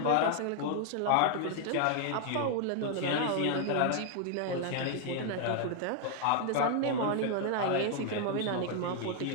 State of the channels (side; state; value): both; different; correlation 0.00